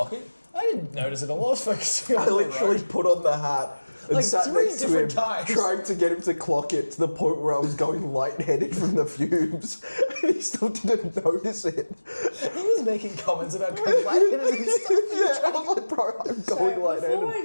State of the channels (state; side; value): inverted; both; correlation -1.00